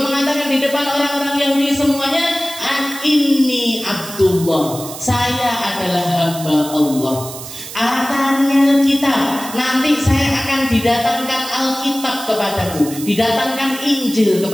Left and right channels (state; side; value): noise; right; hiss, 12 dB below the sound